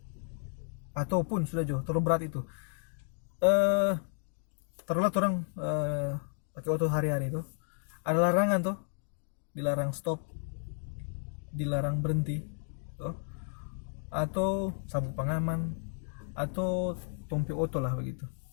ataupun sudah jauh terlalu berat itu taruhlah orang pakai auto hari-hari itu ada larangan tuh, dilarang stop, dilarang berhenti, atau sabuk pengaman, atau tompi oto lah begitu.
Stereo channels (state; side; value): silent; right; digital silence